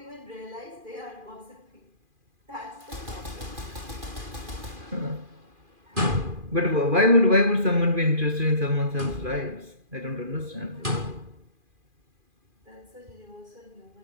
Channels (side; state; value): left; late; 2.4 ms